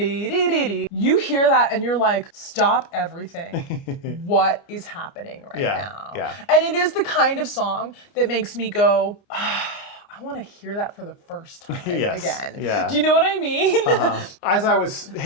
hear that and you're like, stop everything. What is happening right now? Yeah. And it is the kind of song that makes me go, I want to hear that for the first time again. Yeah. Do you know what I mean? As I was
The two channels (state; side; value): late; right; 29 ms